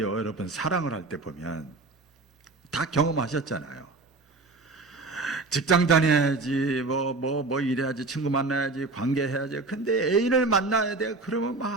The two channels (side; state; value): left; quieter; 3.6 dB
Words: 여러분 사랑을 할 때 보면 다 경험하셨잖아요. 직장 다녀야지, 뭐 이래야지, 친구 만나야지, 관계해야지. 근데 애인을 만나야 돼. 그러면